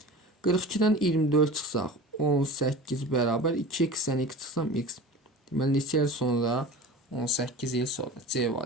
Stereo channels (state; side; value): normal; both; correlation 0.35